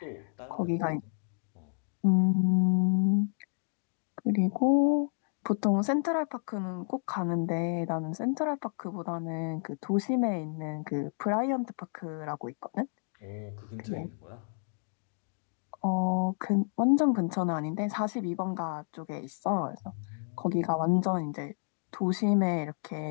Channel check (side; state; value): right; silent; digital silence